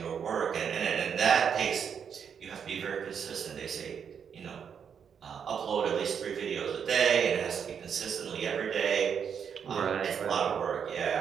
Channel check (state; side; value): quieter; left; 7.4 dB